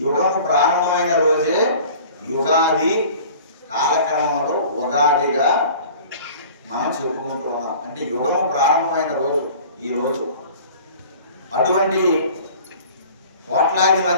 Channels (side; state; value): both; inverted; correlation -0.45